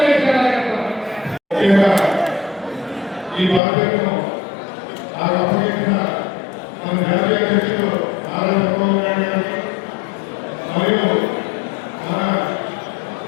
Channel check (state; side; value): drops out; right; at 3.6 s